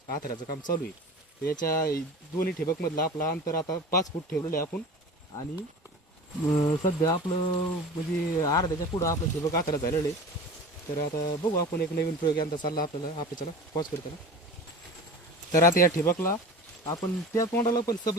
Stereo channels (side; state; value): both; normal; correlation 0.36